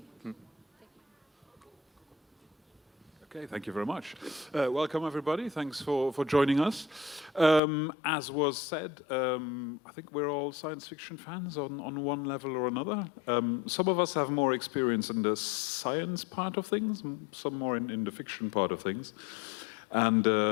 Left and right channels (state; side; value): drops out; right; at 7.6 s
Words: Okay, thank you very much. Welcome, everybody. Thanks for joining us. As was said, I think we're all science fiction fans on one level or another. Some of us have more experience in the science part of things, some more in the fiction part of things. And